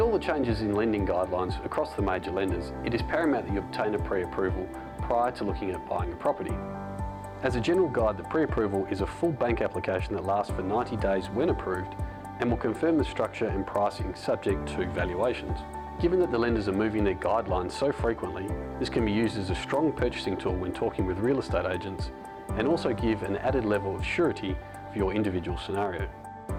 the changes in lending guidelines across the major lenders, it is paramount that you obtain a pre-approval prior to looking at buying a property. As a general guide, the pre-approval is a full bank application that lasts for 90 days when approved and will confirm the structure and pricing subject to valuations. Given that the lenders are moving their guidelines so frequently, this can be used as a strong purchasing tool when talking with real estate agents and also give an added level of surety for your individual scenario.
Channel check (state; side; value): identical; both; correlation 1.00